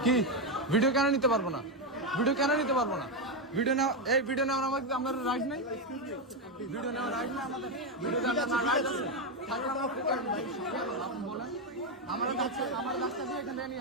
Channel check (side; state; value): both; normal; correlation 0.07